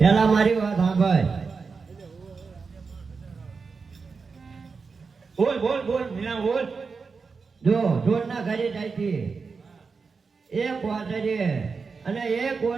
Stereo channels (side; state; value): left; quieter; 4.9 dB